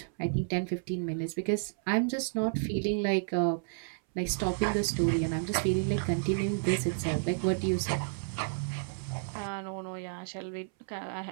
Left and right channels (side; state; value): left; silent; 57 dB below the other